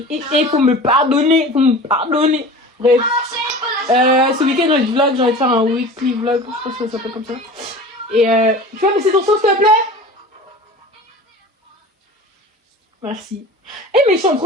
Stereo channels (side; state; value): both; normal; correlation 0.37